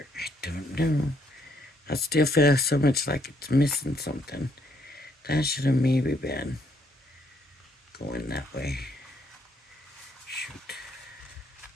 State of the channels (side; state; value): both; normal; correlation 0.71